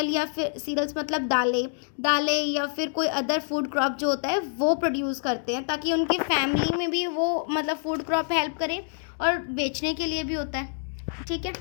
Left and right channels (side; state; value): right; silent; 60 dB below the other